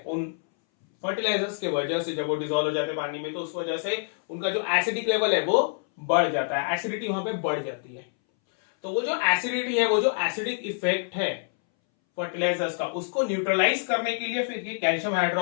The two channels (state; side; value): silent; right; 60 dB below the other